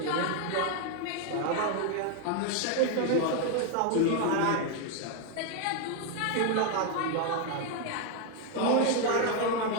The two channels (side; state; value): both; different; correlation 0.01